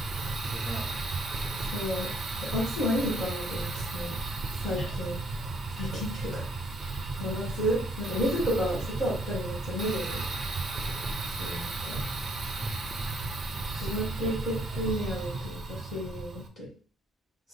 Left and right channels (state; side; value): normal; both; correlation 0.65